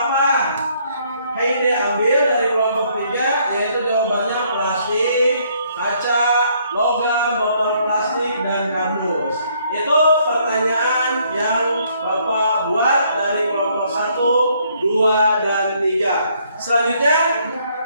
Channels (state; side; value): inverted; both; correlation -0.67